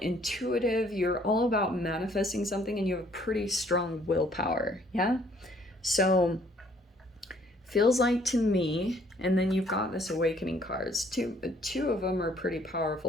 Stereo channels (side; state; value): both; normal; correlation 0.62